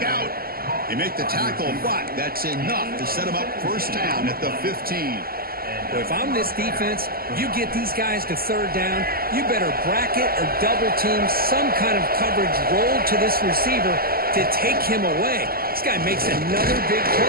out. They make the tackle, but that's enough to set them up first down at the 15. Well, if I'm this defense, you get these guys to third down, you better bracket or double team some kind of coverage roll to this receiver to take him away. This guy makes another big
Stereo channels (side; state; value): left; late; 0.43 ms